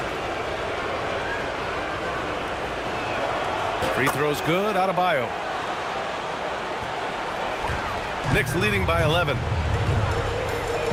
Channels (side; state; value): both; identical; correlation 1.00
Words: Free throw's good. Adebayo. Knicks leading by 11.